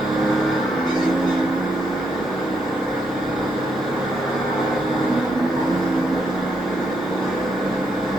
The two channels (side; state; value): both; normal; correlation 0.77